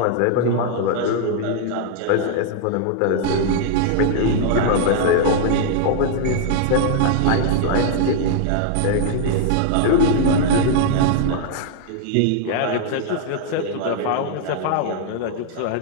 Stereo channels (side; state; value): both; different; correlation -0.01